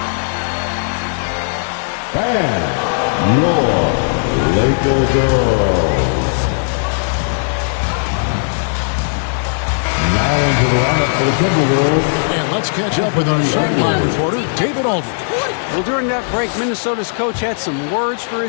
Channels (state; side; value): silent; right; digital silence